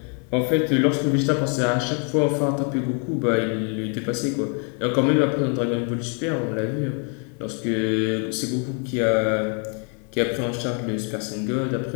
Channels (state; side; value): quieter; right; 38.8 dB